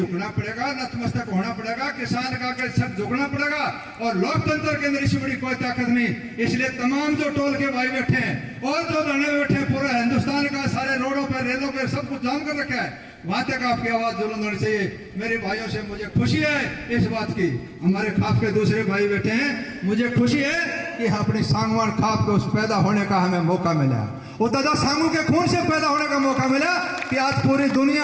पड़ेगा, नतमस्तक होना पड़ेगा, किसान का के सब झुकना पड़ेगा। और लोकतंत्र के अंदर इससे बड़ी कोई ताकत नहीं। इसलिए तमाम जो टोल के भाई बैठे हैं और जो धरने में बैठे हैं, पूरा हिंदुस्तान का सारे रोडों पर, रेलों पर सब कुछ जाम कर रखा है, वहां तक आपकी आवाज बुलंद होनी चाहिए। मेरे भाइयों से मुझे खुशी है इस बात की, हमारे खाप के दूसरे भाई बैठे हैं, मुझे खुशी है कि अपनी सांगवान खाप को उस पैदा होने का हमें मौका मिला, वो दादा सांगू के खून से पैदा होने का मौका मिला कि आज पूरी दुनिया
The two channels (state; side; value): identical; both; correlation 1.00